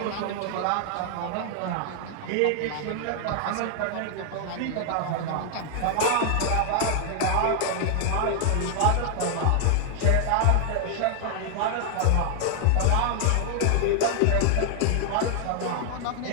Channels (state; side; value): different; both; correlation 0.00